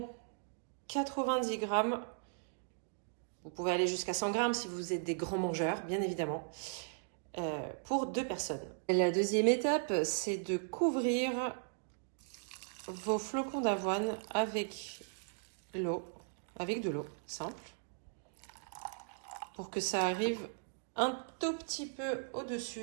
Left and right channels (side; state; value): left; silent; digital silence